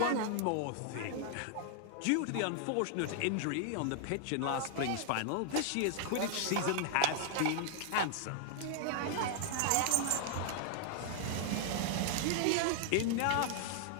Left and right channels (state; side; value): different; both; correlation 0.00